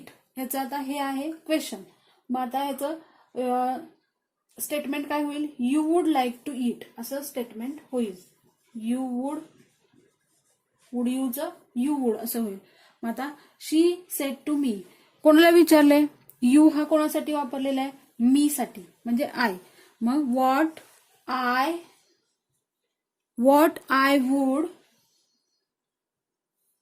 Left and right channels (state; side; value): identical; both; correlation 1.00